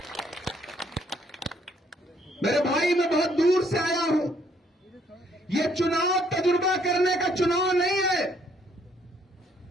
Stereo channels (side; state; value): both; normal; correlation 0.67